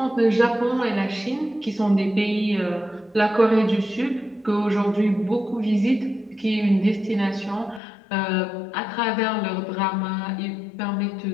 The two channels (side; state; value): right; drops out; at 7.8 s